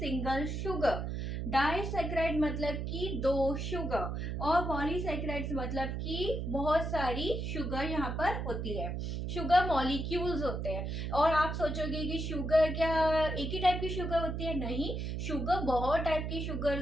शुगर, डाइसैकेराइड मतलब कि 2 शुगर, और पॉलीसैकेराइड्स मतलब कि बहुत सारी शुगर यहाँ पर होती है। शुगर मॉलिक्यूल्स होते हैं। और आप सोचोगे कि शुगर क्या एक ही टाइप की शुगर होती है? नहीं, शुगर बहुत टाइप की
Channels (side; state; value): right; noise; hum, 3 dB below the sound